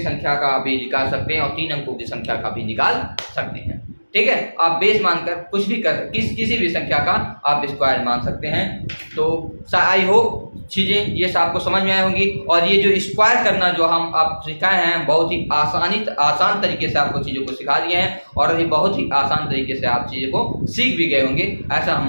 का भी निकाल सकते हैं और 3 अंकों की संख्या का भी निकाल सकते हैं। ठीक है, आप बेस मानकर कुछ भी किसी भी संख्या का आप स्क्वायर मान सकते हैं। तो आई होप चीज़ें ये आपको समझ में आई होंगी। और ये जो स्क्वायर करना जो हम आप सिखाए हैं, बहुत ही आसान तरीके से आपको चीज़ों को सिखा दिए हैं और ये बहुत ही आसान तरीके से आप चीज़ों को सीख भी गए होंगे, ऐसा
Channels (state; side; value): inverted; both; correlation -1.00